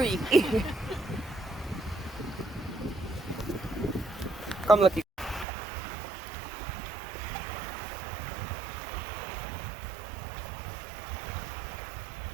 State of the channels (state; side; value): drops out; left; at 5.5 s